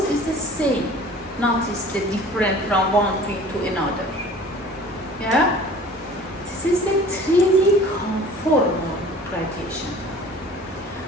is the same, notice the different from one field to another, yeah. This is the 3D conformal radiation.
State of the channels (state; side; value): normal; both; correlation 0.46